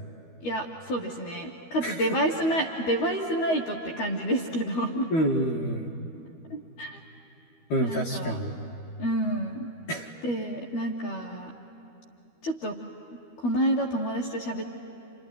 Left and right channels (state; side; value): late; right; 12 ms